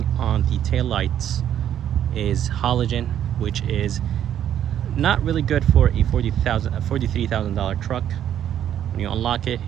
on the taillights is halogen, which is not really good for a $43,000 truck. When you unlock it,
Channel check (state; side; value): quieter; left; 10.3 dB